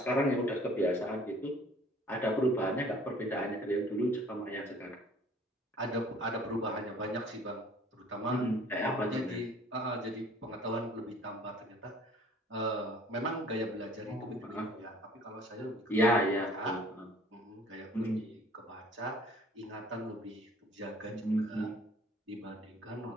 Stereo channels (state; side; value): normal; both; correlation 0.53